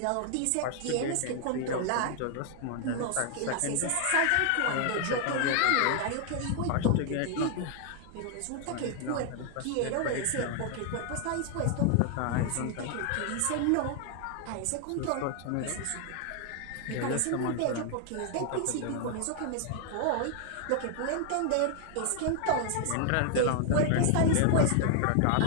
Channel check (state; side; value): different; both; correlation 0.00